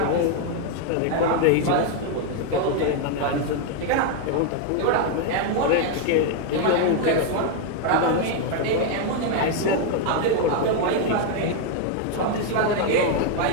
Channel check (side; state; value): both; different; correlation 0.01